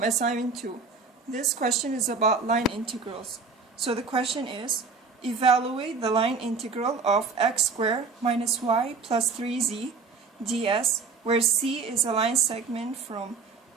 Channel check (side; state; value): left; quieter; 4.7 dB